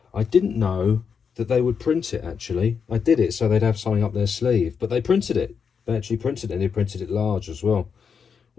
didn't know that they would print it. Actually, I did it so they'd have something up their sleeve, but they printed it. They actually printed it, and they printed it large as well,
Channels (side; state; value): right; quieter; 6.4 dB